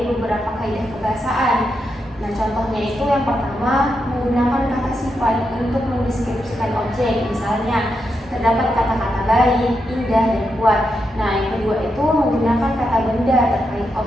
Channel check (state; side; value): normal; both; correlation 0.84